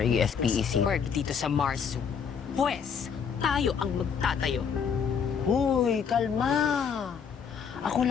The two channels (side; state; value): right; quieter; 6.8 dB